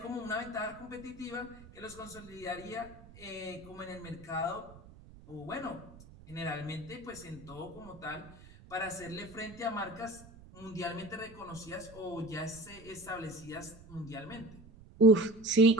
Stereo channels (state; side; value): noise; right; rumble, 19 dB below the sound